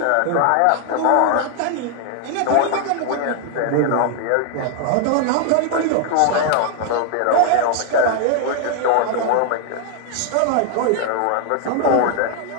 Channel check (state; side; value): different; both; correlation 0.00